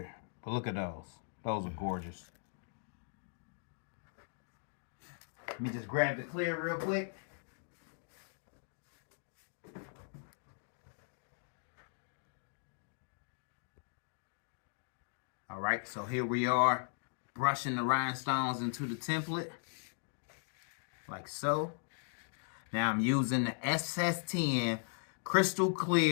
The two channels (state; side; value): silent; right; digital silence